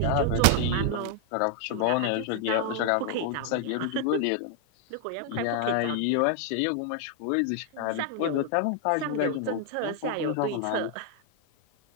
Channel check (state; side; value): different; both; correlation 0.00